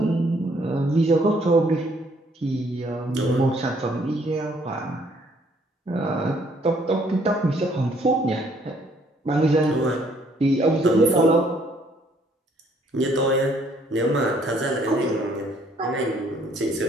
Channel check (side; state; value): both; normal; correlation 0.64